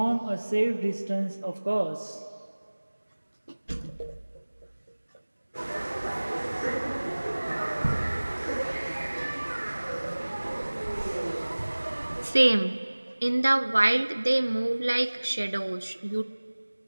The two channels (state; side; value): inverted; both; correlation -1.00